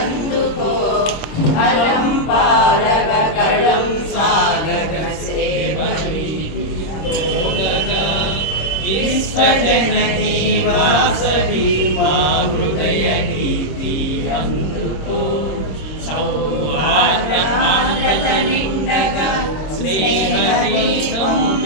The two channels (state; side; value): late; right; 26 ms